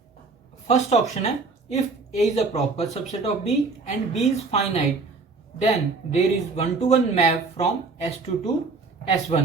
First option है if A is a proper subset of B and B is finite, then there is one-to-one map from S2 to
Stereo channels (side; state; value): left; quieter; 4.1 dB